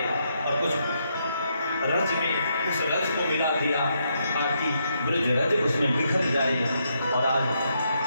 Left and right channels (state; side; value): inverted; both; correlation -0.78